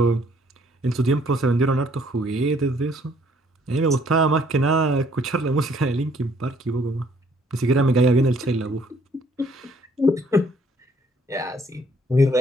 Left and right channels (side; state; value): both; normal; correlation 0.63